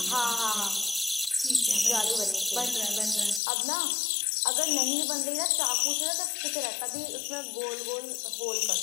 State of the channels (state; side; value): drops out; right; at 3.4 s